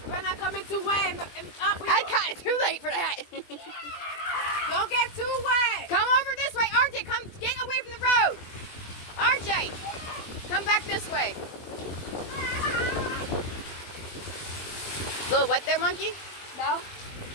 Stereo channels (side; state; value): right; late; 20 ms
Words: We're not coming too wet. I got it too late for that. Don't get too wet. Come over this way, RJ. Come get away from the road. RJ, come back this way. Little wet there, monkey? No.